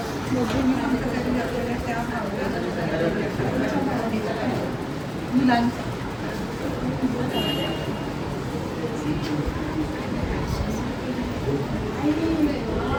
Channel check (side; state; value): both; identical; correlation 1.00